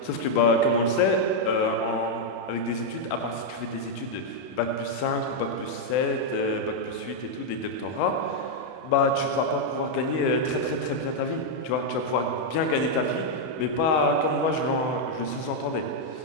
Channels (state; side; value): late; right; 31 ms